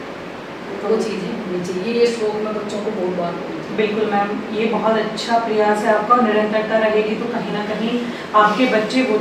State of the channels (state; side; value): identical; both; correlation 1.00